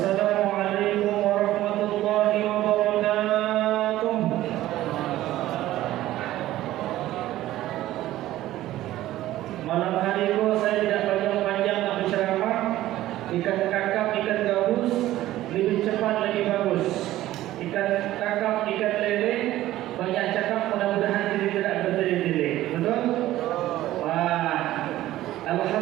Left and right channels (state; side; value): quieter; left; 14.9 dB